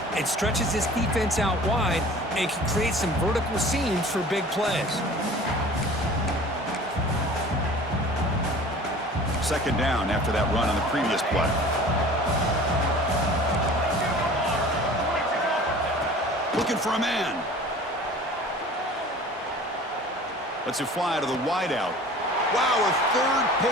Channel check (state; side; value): normal; both; correlation 0.44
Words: it stretches this defense out wide and can create some vertical seams for big plays. 2nd down after that run on the previous play. Looking for a man. Lets it fly to the wideout. Wow, a 3rd